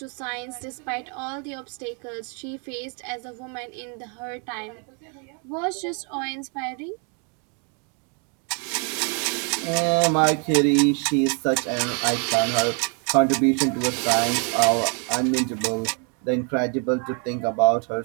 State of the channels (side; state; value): left; quieter; 37.8 dB